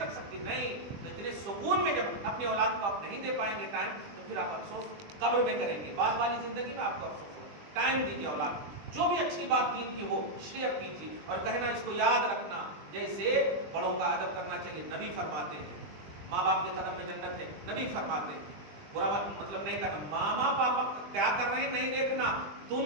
सकती? नहीं। तो इतने सुकून में जब अपनी औलाद को आप नहीं दे पाएंगे टाइम, तो फिर आप अफसोस कब्र में करेंगे, बाद वाली जिंदगी में आपको अफसोस हो। टाइम दीजिए औलाद, जो भी अच्छी बात दीन की हो शेयर कीजिए, और कहना इसको याद रखना, जैसे बड़ों का अदब करना चाहिए। नबी फरमाते हैं माँ बाप के कदम में जन्नत है, नबी फरमाते हैं बुरा मतलब नहीं करना। मामा पापा क्या कर रहे हैं नहीं देखना,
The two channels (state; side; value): late; left; 20 ms